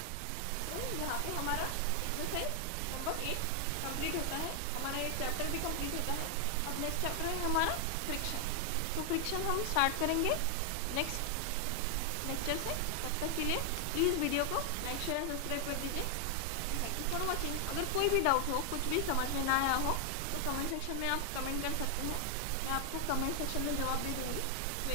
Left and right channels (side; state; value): both; different; correlation 0.00